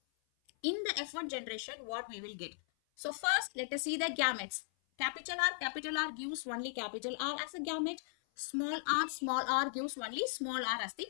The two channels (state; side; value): silent; right; 53 dB below the other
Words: in the F1 generation, what we will get? So first let us see the gametes. Capital R gives only capital R as a gamete. Small r gives only small r as the